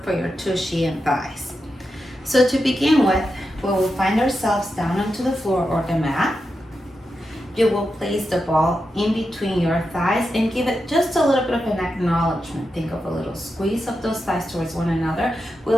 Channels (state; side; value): normal; both; correlation 0.88